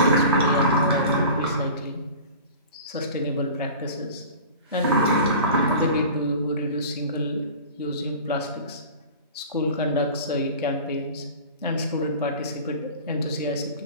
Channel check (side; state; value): both; inverted; correlation -0.39